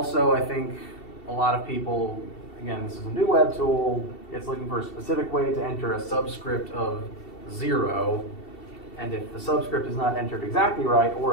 I think a lot of people, again, this is a new web tool, it's looking for a specific way to enter a subscript of 0. And if the subscript is not entered exactly right,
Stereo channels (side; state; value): right; late; 2.7 ms